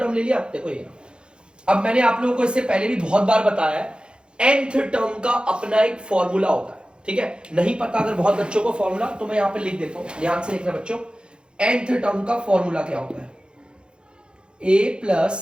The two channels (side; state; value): left; late; 0.052 ms